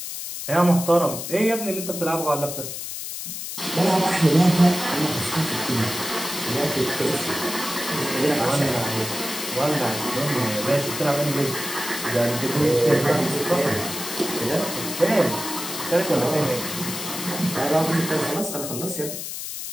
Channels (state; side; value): noise; left; hiss, 7 dB below the sound